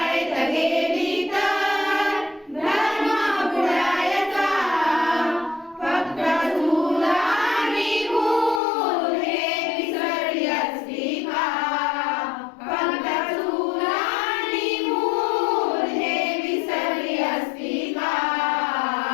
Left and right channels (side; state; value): right; drops out; at 8.6 s